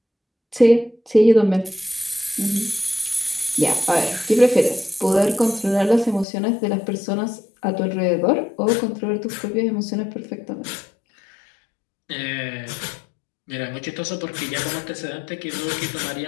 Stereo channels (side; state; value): right; drops out; at 6.2 s